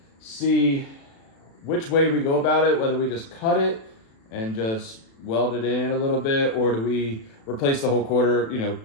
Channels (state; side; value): late; right; 36 ms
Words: see which way we go about it. Whether we just cut it and just weld it in a little bit, or do we replace the whole quarter, you know,